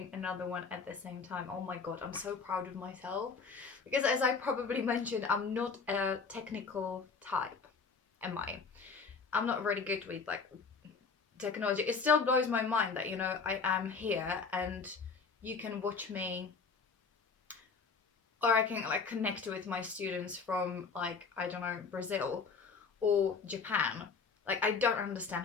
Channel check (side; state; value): right; quieter; 5.1 dB